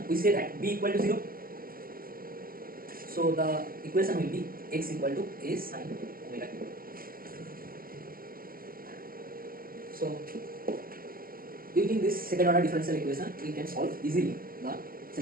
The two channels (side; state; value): left; late; 0.42 ms